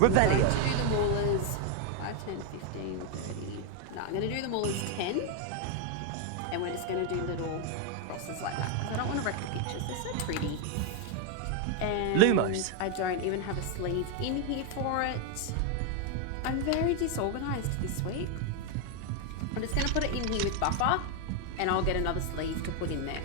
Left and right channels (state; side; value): different; both; correlation 0.01